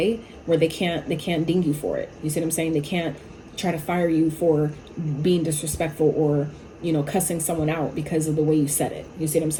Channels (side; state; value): both; identical; correlation 1.00